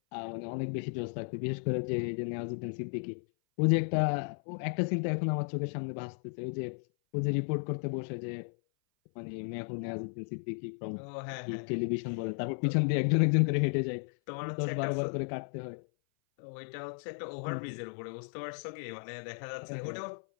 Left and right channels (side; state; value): right; silent; 55 dB below the other